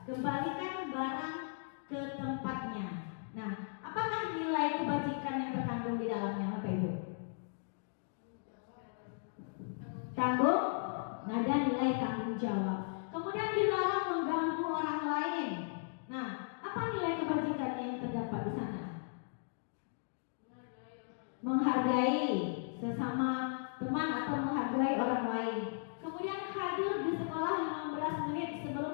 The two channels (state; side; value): silent; right; digital silence